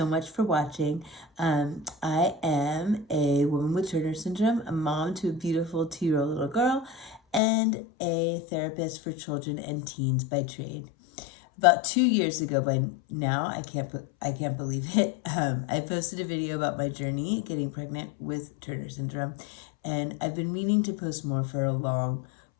much for watching. I am a woman with Turner syndrome, a mom to a beautiful 2-year-old little girl, and a therapist for children and teens by trade. About 2 years ago by now, I can't believe it, I posted a video about my journey getting pregnant with Turner syndrome, and I've been meaning to post more for a long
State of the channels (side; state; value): right; drops out; at 7.4 s